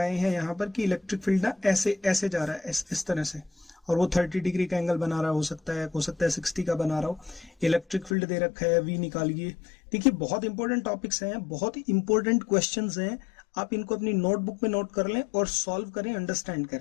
हैं यहाँ पर कि इलेक्ट्रिक फील्ड ना ऐसे ऐसे जा रहा है, इस तरह से, और वो 30 डिग्री का एंगल बना रहा हो सकता है 60 का बना रहा हो। इलेक्ट्रिक फील्ड दे रखा है, V निकालिए। देखिए बहुत इंपॉर्टेंट टॉपिक्स हैं, बहुत इंपॉर्टेंट क्वेश्चंस हैं, आप इनको अपनी नोटबुक में नोट कर लें और सॉल्व करें, अंडरस्टैंड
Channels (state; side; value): drops out; right; at 8.2 s